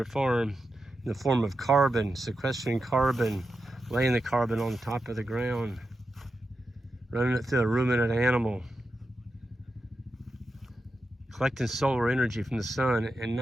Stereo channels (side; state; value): both; normal; correlation 0.89